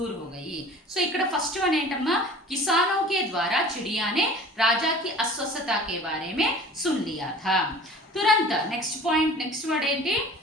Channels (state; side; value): normal; both; correlation 0.44